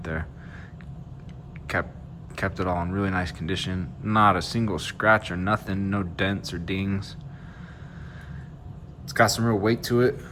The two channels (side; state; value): both; identical; correlation 1.00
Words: there. Kept it all in really nice condition. Not a single scratch or nothing, no dents or dings. It's got some real weight to it.